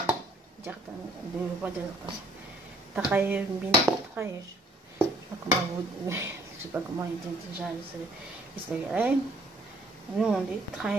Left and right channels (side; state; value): both; normal; correlation 0.62